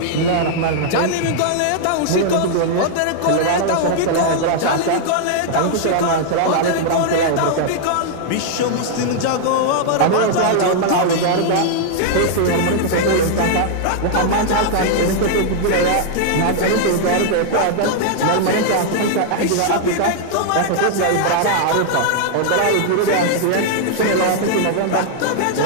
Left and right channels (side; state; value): both; different; correlation -0.01